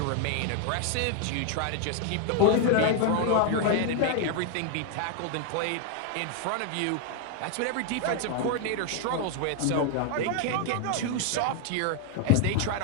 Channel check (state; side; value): different; both; correlation 0.00